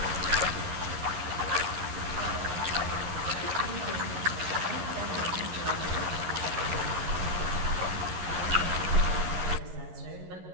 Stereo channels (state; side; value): late; left; 11 ms